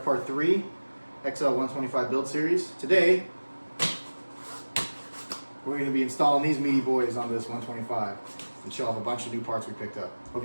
part 3, XL125 build series. Today, we're going to be installing these meaty boys on this 125 and show off a bunch of new parts we picked up. Hope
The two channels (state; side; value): inverted; both; correlation -1.00